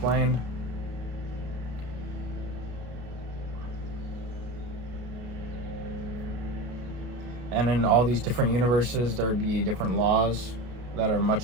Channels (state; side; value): late; left; 33 ms